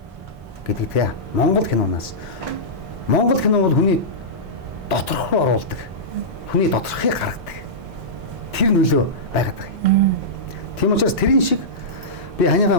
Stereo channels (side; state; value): both; normal; correlation -0.15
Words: гэдэг тийм. Монгол киноноос Монгол кино бол хүний доторх руу оруулдаг. Хүний доторхыг гаргадаг. Тэр нөлөө байгаад байгаа юм. Тийм учраас тэрийн шиг би ханийгаа